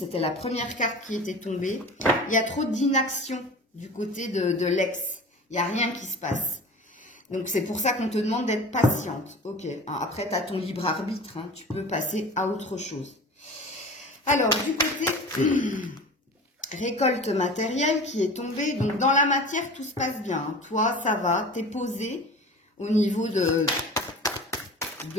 la première carte qui était tombée. Il y a trop d'inaction du côté de l'ex. Il n'y a rien qui se passe. Donc, c'est pour ça qu'on te demande d'être patiente. Ok. Après, tu as ton libre arbitre. Hein. Tu peux passer à autre chose. Alors, du côté récolte matérielle qui est tombée. Donc, dans la matière, tout se passe bien. Hein. Toi, ça va. Tu es posé au niveau de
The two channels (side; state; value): both; normal; correlation 0.37